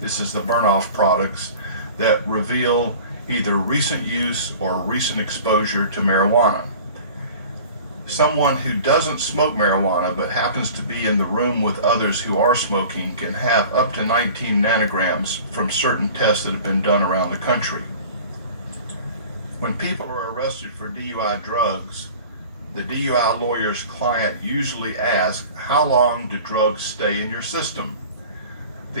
is the burn-off products, that reveal either recent use or recent exposure to marijuana. Someone who doesn't smoke marijuana but happens to be in the room with others who are smoking can have up to 19 nanograms from certain tests that have been done around the country. When people are arrested for DUI drugs, the DUI lawyer's client usually asks, how long do drugs stay in your system? The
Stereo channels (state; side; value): inverted; both; correlation -0.42